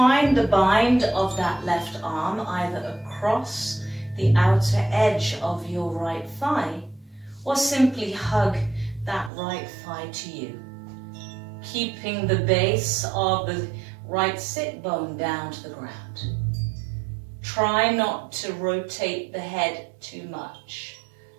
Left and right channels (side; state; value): left; drops out; at 9.3 s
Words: the bind of that left arm either across the outer edge of your right thigh or simply hug that right thigh to you, keeping the base of the right sit bone down to the ground. Try not to rotate the head too much.